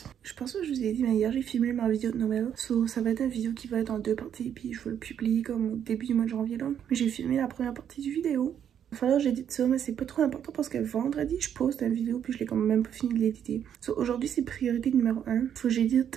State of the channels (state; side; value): quieter; left; 9.1 dB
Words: je pense que je vous ai dit mais hier j'ai filmé ma vidéo de Noël. So ça va être une vidéo qui va être en 2 parties puis je vais le publier comme au début du mois de janvier là. Mais j'ai filmé la première partie du vidéo. Il va falloir que j'édite ça mais c'est pas trop important parce que vendredi je poste une vidéo puis je l'ai quand même pas fini de l'éditer. So aujourd'hui c'est priorité numéro 1. Faut que